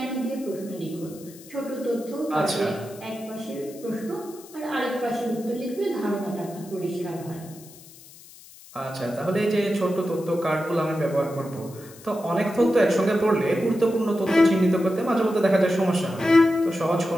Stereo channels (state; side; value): noise; left; hiss, 21 dB below the sound